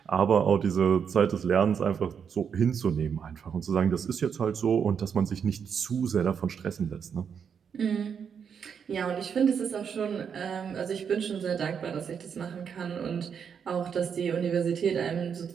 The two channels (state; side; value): quieter; left; 7.1 dB